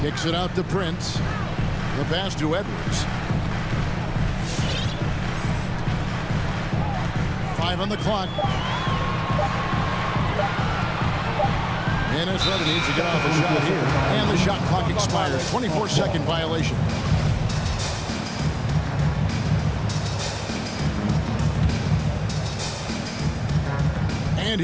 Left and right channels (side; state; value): both; identical; correlation 1.00